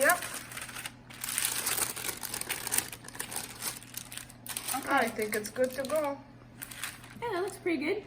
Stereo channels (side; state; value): both; identical; correlation 1.00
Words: Okay. I think it's good to go. Yeah, that looks pretty good.